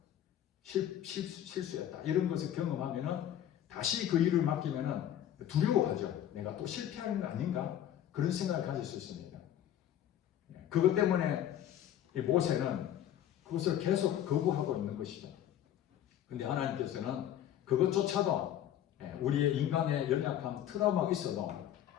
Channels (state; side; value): quieter; right; 11.1 dB